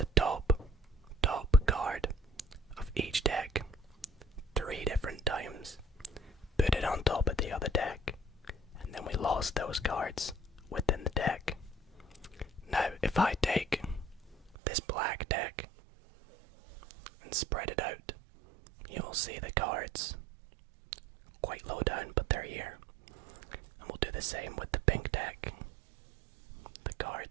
top card of each deck 3 different times, put it on top of the other deck, and then we lost those cards within the deck. Now, if I take this black deck and spread it out, you'll see the cards quite low down, but they're here. And we'll do the same with the pink deck. The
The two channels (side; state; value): left; drops out; at 14.6 s